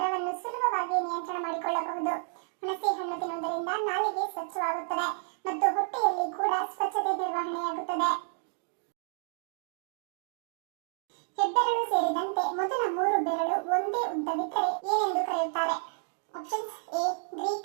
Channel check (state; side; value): silent; left; digital silence